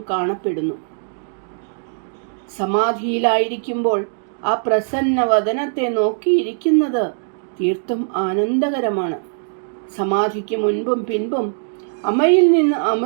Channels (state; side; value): silent; left; digital silence